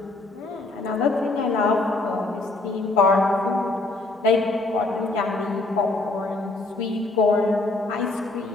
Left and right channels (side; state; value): right; quieter; 3.1 dB